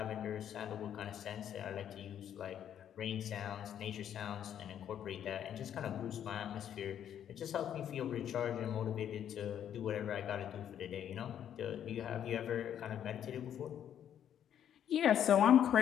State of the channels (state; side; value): quieter; right; 9.8 dB